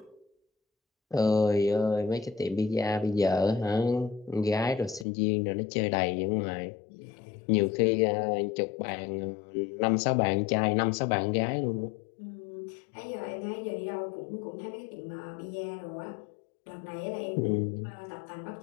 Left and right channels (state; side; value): drops out; right; at 5.1 s